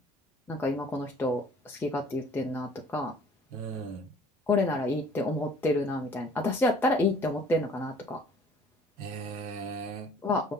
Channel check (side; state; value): both; normal; correlation 0.53